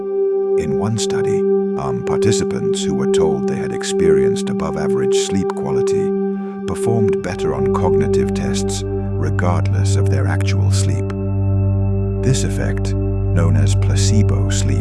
one study, participants who were told they had experienced above-average sleep quality performed better on cognitive tests regardless of their actual sleep. This effect, known as placebo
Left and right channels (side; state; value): both; identical; correlation 1.00